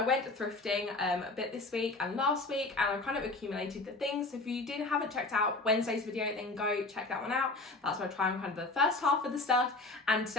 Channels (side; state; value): right; quieter; 3.2 dB